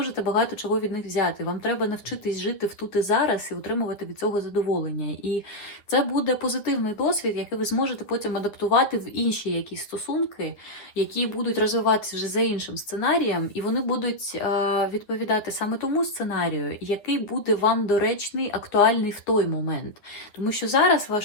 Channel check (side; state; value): right; late; 9.8 ms